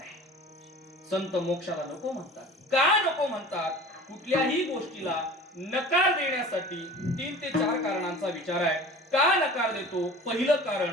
संत मोक्षाला नको म्हणतात. का नको म्हणतात? कुठल्याही गोष्टीला नकार देण्यासाठी 3 ते 4 कारणांचा विचार आहे. का नकार देतो? पहिलं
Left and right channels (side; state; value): both; normal; correlation 0.41